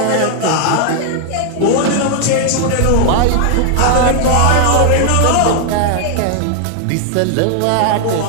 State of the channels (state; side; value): different; both; correlation 0.00